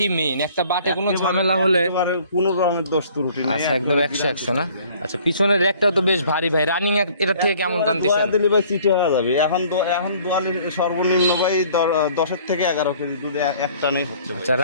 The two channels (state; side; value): inverted; both; correlation -0.55